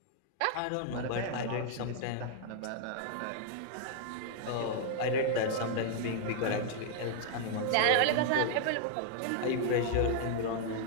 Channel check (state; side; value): different; both; correlation 0.00